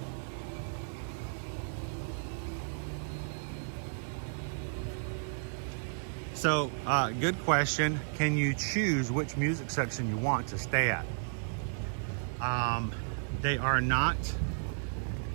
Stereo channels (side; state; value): left; silent; digital silence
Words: So, good question. Can you choose which music section you want to stay at? They are not